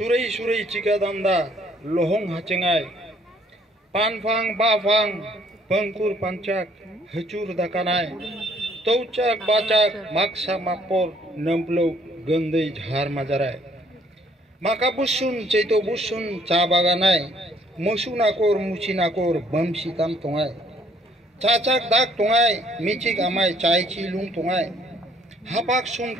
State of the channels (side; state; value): both; normal; correlation 0.63